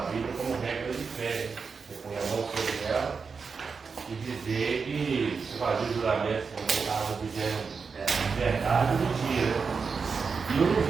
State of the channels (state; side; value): quieter; left; 5.3 dB